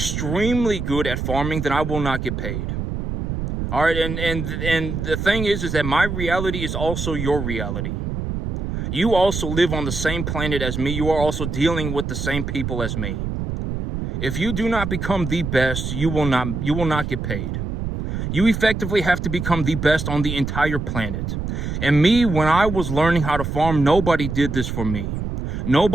good at farming, then I will not get paid. All right, and the thing is that my reality is also your reality. You also live on the same planet as me. You are also dealing with the same people as me. If you do not become the best, you will not get paid. You effectively have to become the best on the entire planet. And me, when I was learning how to farm, nobody did this for me.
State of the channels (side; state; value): right; noise; rumble, 4 dB below the sound